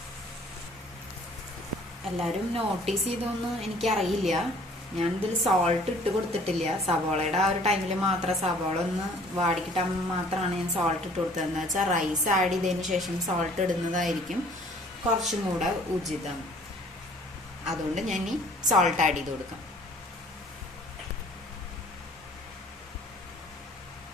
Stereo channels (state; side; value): normal; both; correlation 0.54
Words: എല്ലാവരും നോട്ടീസ് ചെയ്തൊന്നും എനിക്കറിയില്ല. ഞാനിതിൽ സോൾട്ട് ഇട്ട് കൊടുത്തിട്ടില്ല. സവോളയുടെ ആ ഒരു ടൈമിൽ മാത്രം സവോള ഒന്ന് വാടിക്കിട്ടാൻ മാത്രമാണ് ഞാൻ സോൾട്ട് ഇട്ട് കൊടുത്തത്. എന്ന് വെച്ചാൽ റൈസ് ആഡ് ചെയ്തതിന് ശേഷം സോൾട്ട് ഇടുന്നതായിരിക്കും കുറച്ചും കൂടെ ഉചിതം. അതുകൊണ്ട് ഞാൻ ഈ സോൾട്ട് ആഡ് ചെയ്ത് കൊടുക്കാം.